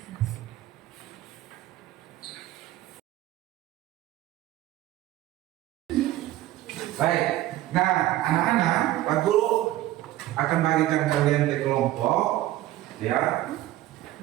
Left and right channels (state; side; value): quieter; left; 15.0 dB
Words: Baik. Nah, anak-anak, Pak Guru akan bagikan kalian ke kelompok, ya.